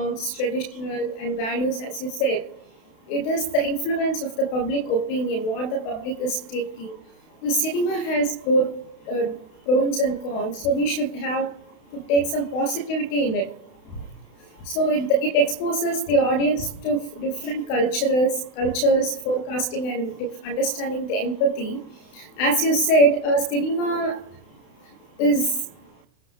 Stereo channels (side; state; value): right; late; 32 ms